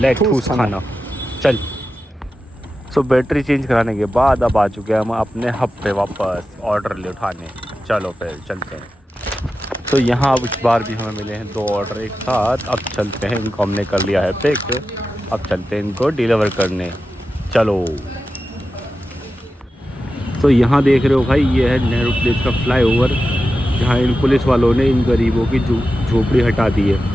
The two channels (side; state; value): both; normal; correlation 0.92